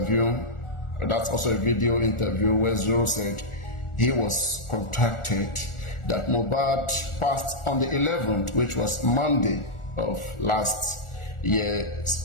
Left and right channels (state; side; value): late; right; 1.4 ms